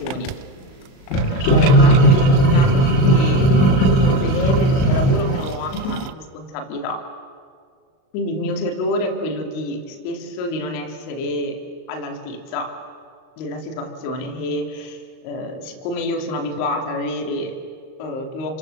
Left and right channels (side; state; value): right; late; 38 ms